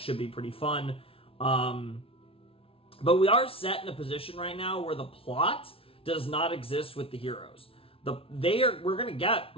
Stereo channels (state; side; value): late; right; 0.26 ms